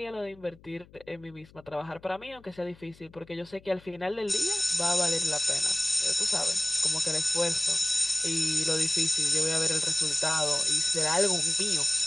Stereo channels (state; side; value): noise; left; hum, 25 dB below the sound